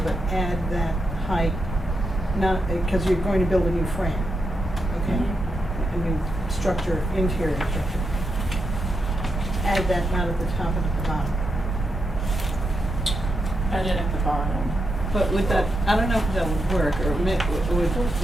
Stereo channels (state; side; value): normal; both; correlation 0.84